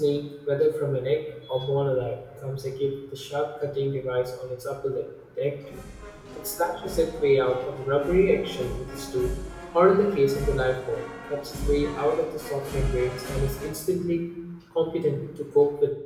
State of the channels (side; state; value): both; identical; correlation 1.00